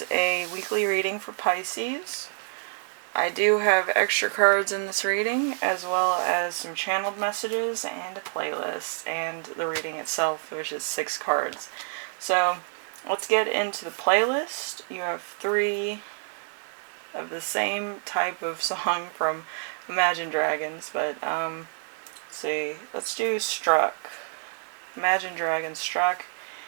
a weekly reading for Pisces. I do have extra cards in this reading, as well as some channeled messages and a playlist, and the reading itself, which is 6 cards. So, let's get into the playlist. You have 3 of the same type of song from Imagine Dragons, but, let's see, let's do Struck. Imagine Dragons Struck,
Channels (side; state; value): left; silent; 60 dB below the other